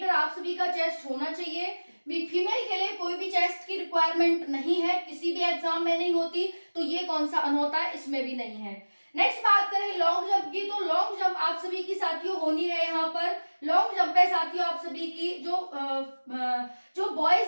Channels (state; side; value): inverted; both; correlation -1.00